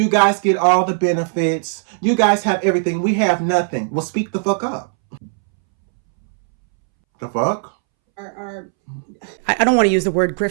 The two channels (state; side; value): silent; left; 66 dB below the other